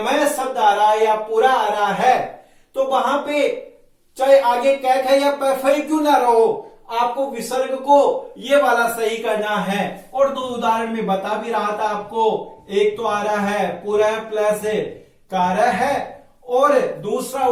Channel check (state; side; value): identical; both; correlation 1.00